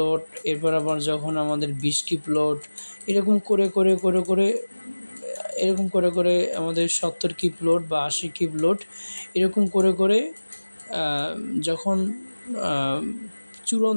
এরপর আবার যখন আমাদের 20 কিপ লোড, এরকম করে আমাদের 70 কিপ লোড বা 80 কিপ লোড, এরকম করে যখন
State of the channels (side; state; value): both; inverted; correlation -1.00